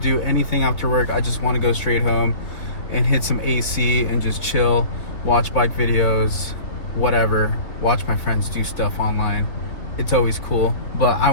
anything after work. I just want to go straight home and hit some AC and just chill, watch bike videos, whatever, watch my friends do stuff online. It's always cool, but I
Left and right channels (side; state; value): right; late; 3.4 ms